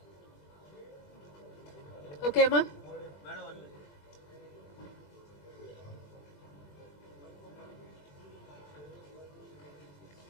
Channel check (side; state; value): right; late; 20 ms